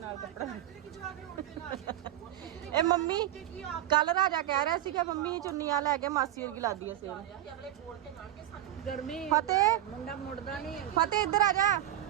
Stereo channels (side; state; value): left; quieter; 12.6 dB